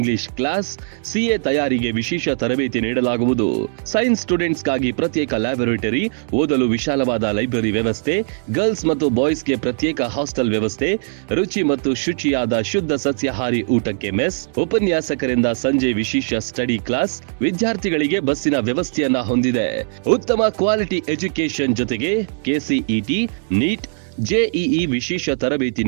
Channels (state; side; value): silent; left; digital silence